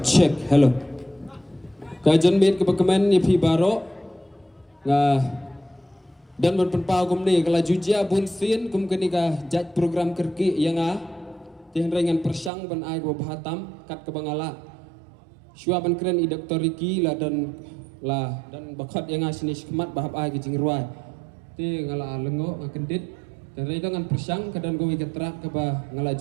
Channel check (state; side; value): drops out; left; at 12.5 s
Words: check, hello. Kajian bit ke pekemen ni pi baro. Dan berpenpau kum ni kalau jujia bun sin kum kini ka jat program kerki yang tiang ringan persang ban ai go bahatam kat ke bangala. Syua ban keren i Dr. Ricky lah dan bakat yang sini kemat bahap ai ke jingruai. Ti ngala lengo ngakendit dan ringan persang kadan go iketrak ke bah ngala